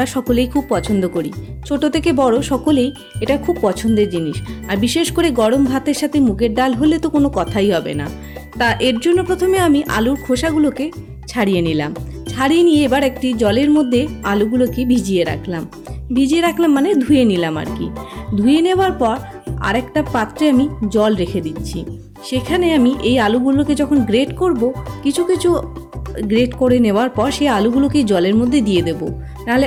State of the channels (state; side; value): identical; both; correlation 1.00